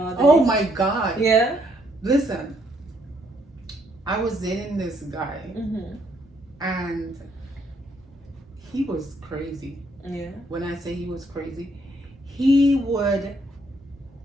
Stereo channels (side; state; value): both; normal; correlation 0.71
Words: day? Oh my God. Yeah. Listen, I was dating this guy, and he was crazy. Yeah. When I say he was crazy,